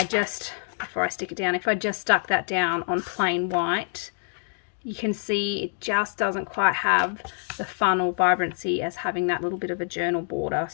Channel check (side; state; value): right; silent; digital silence